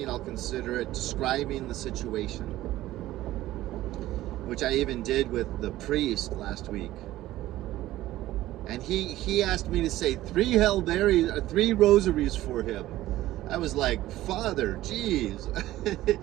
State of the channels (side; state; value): left; quieter; 15.4 dB